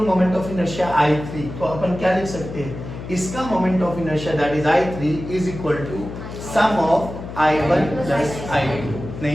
moment of inertia I3, तो अपन क्या लिख सकते हैं, इसका moment of inertia that is I3 is equal to sum of I1 plus I2।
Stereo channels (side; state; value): left; noise; hum, 10 dB below the sound